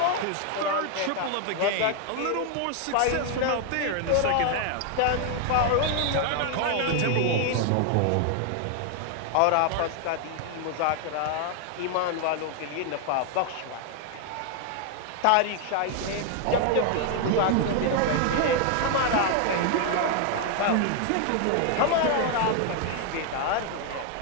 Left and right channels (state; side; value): different; both; correlation 0.01